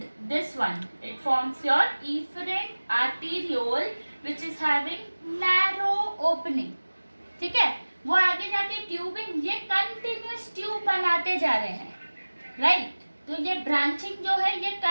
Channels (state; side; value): inverted; both; correlation -1.00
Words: this one, it forms your efferent arteriole, which is having narrow opening. ठीक है, वो आगे जाके tubing, ये continuous tube बनाते जा रहे हैं, राइट? तो ये ब्रांचिंग जो है, ये